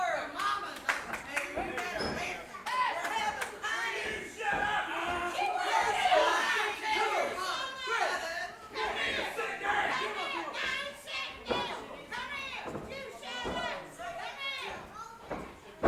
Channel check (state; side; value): identical; both; correlation 1.00